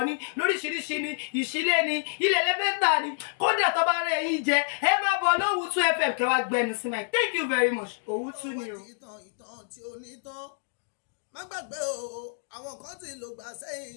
ní lóríṣiríṣi ní ìṣílẹ̀ ní ilẹ̀ lẹ́fẹ́ tà ní kódà tó bá rẹ̀ yín jẹ ẹ máa bọ̀ Owutu FM kẹ́ wá gbẹnu sí máa thank you very much Owutu ni o. ìtàn tí ó ní tán má gbàgbé o àwọn kan tí ló gbà sẹ́yìn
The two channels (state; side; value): silent; right; digital silence